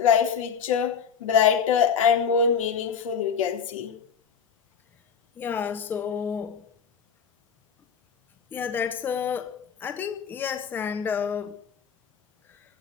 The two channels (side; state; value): right; quieter; 6.9 dB